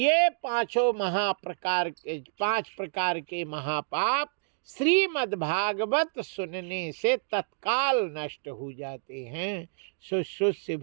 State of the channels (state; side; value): silent; left; digital silence